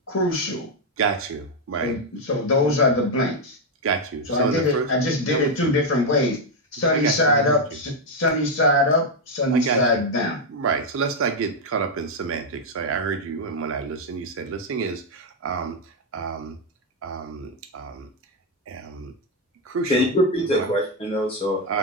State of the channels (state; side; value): normal; both; correlation 0.02